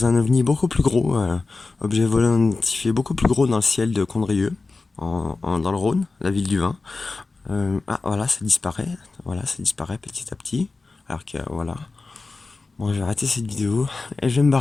un ovni beaucoup plus gros, objet volant identifié beaucoup plus gros dans le ciel de Condrieu, dans le Rhône, la ville du vin. Ah voilà, ça disparaît petit à petit. Alors que voilà. Bon, je vais arrêter cette vidéo et je vais me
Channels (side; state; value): right; quieter; 3.8 dB